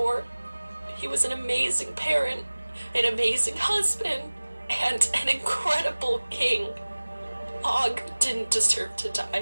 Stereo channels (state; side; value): inverted; both; correlation -1.00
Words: He was an amazing parent, an amazing husband, and an incredible king. Og didn't deserve to